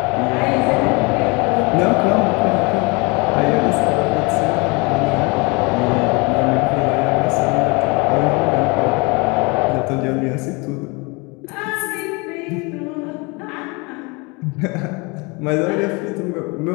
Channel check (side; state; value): right; quieter; 28.2 dB